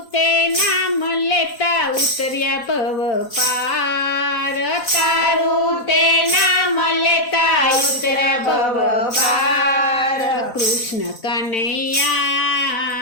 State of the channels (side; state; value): right; late; 4.1 ms